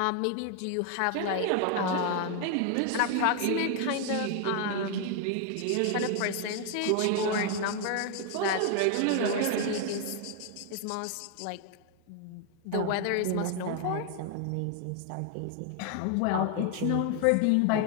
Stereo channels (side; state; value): both; different; correlation 0.00